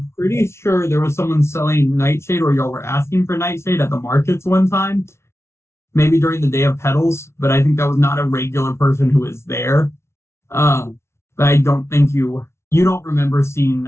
pretty sure there was someone selling nightshade, or y'all were asking for nightshade at the markets one time. Maybe during the day of petals, but I think that was not a regular person who was there. But I don't think you don't remember seeing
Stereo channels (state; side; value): late; right; 0.13 ms